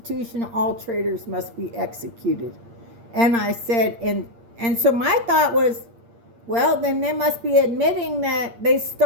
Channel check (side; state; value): left; late; 8.7 ms